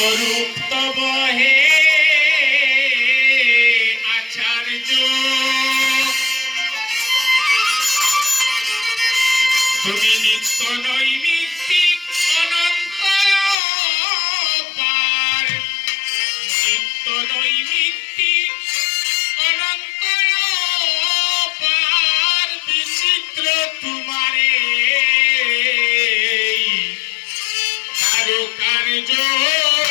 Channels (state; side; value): drops out; right; at 13.6 s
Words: তব হে আচার্য, তুমি নিত্য নৈমিত্তিক অনন্ত পার, নিত্য নৈমিত্তিক অনন্ত পার, বিচিত্র তোমারে কারুকার্য